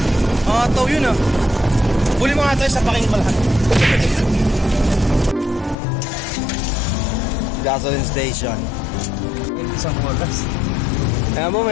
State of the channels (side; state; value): right; drops out; at 5.8 s